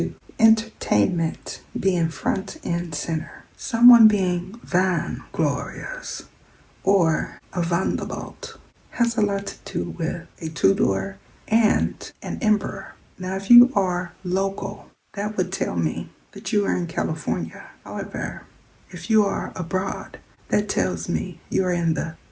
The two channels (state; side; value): identical; both; correlation 1.00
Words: entertainment being front and center, someone being van glorious or a Vanderbilt has a lot to do with a two-door and an emperor. Now, if you are local, that would tell me that you are in California. However, if you are abroad, that tells me you are in the